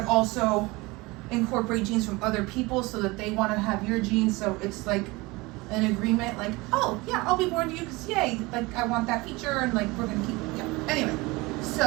also incorporate genes from other people so that they want to have your genes. So it's like an agreement, like, oh, yeah, I'll be born to you because, yay, like, I want that feature, and, like, we're going to keep it. Yeah. Anyway,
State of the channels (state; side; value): quieter; left; 23.2 dB